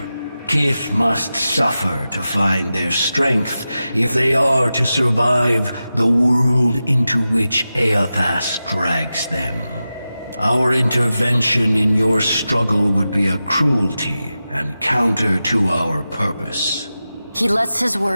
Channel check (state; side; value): inverted; both; correlation -0.93